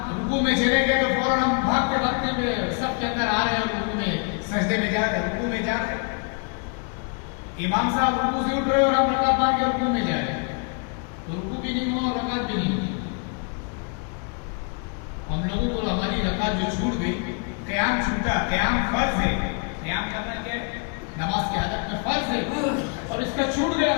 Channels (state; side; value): quieter; right; 36.7 dB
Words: رکوع میں چلے گئے تو فوراً ہم بھاگتے بھاگتے ہوئے سب کے اندر آ رہے ہیں، رکوع میں سجدے میں جا رہے ہیں، رکوع میں جا رہے ہیں. امام صاحب رکوع سے اٹھ رہے اور ہم رکعت مار کے رکوع میں جا رہے ہیں، تو رکوع بھی نہیں ہوا اور رکعت بھی نہیں ہوئی. ہم لوگوں کو ہماری رکعت جو چھوٹ گئی، قیام چھوٹا. قیام فرض ہے، قیام کرنا کیا ہے؟ نماز کے حالت میں فرض ہے، اور اس کا چھوٹ گیا.